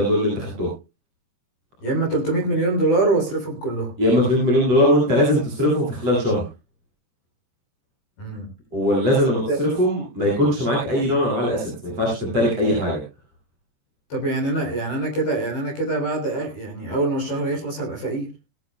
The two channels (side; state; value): right; late; 17 ms